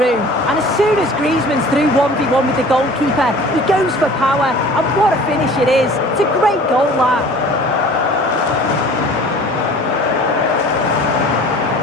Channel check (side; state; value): both; normal; correlation 0.45